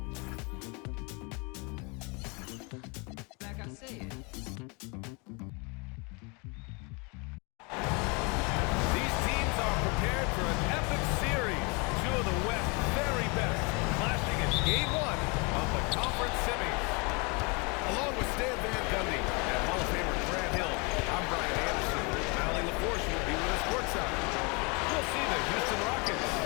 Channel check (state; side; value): quieter; right; 30.6 dB